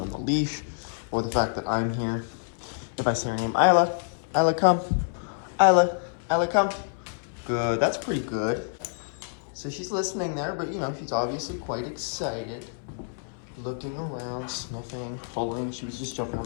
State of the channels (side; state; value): right; silent; 60 dB below the other